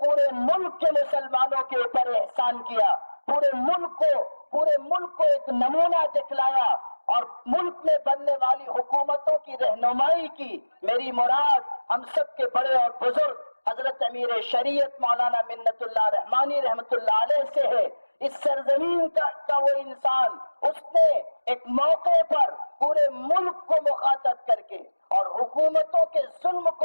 ملک کے مسلمانوں کے اوپر احسان کیا، پورے ملک کو ایک نمونہ دکھلایا اور ملک میں بننے والی حکومتوں کی رہنمائی کی۔ میری مراد ہم سب کے بڑے اور بزرگ حضرت امیر شریعت مولانا منت اللہ رحمانی رحمت اللہ علیہ سے ہے۔ اس سرزمین کا وہ انسان، اس نے ایک موقع پر پورے ملک کو مخاطب کر کے اور حکومتوں کے ظلم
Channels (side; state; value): both; inverted; correlation -1.00